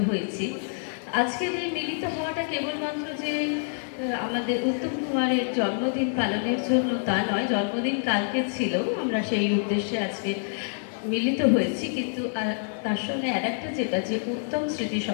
হয়েছি। আজকের এই মিলিত হওয়াটা কেবলমাত্র যে আমাদের উত্তম কুমারের জন্মদিন পালনের জন্য তা নয়, জন্মদিন কালকে ছিল, আমরা সেই উদ্দেশ্যে আজকে মিলিত হয়েছি। কিন্তু তার সঙ্গে আরেকটা যেটা যে উত্তম স্মৃতি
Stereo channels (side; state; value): right; silent; digital silence